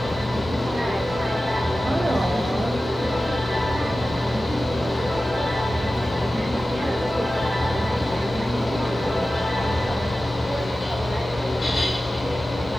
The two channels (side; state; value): both; normal; correlation 0.95